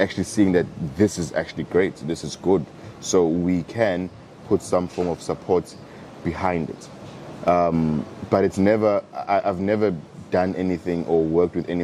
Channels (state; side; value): identical; both; correlation 1.00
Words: seeing that this is actually great, this is good, so we can put some form of support behind it. But it's never, I've never done anything or worked with